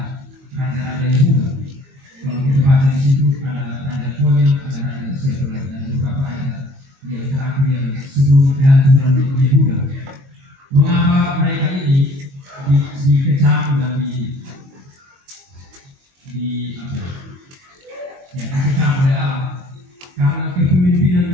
Yehuda. Kalau kita baca di situ ada Raja Konya, ada Raja Sefer dan beberapa raja yang terakhir yang sebelum kehancuran Yehuda. Mengapa mereka ini dikecam dan dikecam oleh Allah? Karena kepemimpinan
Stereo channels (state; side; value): late; left; 22 ms